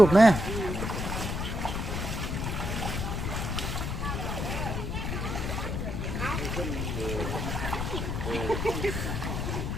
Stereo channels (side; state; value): left; noise; rumble, 2 dB below the sound